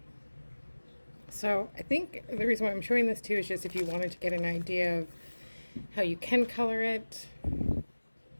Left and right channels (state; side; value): inverted; both; correlation -1.00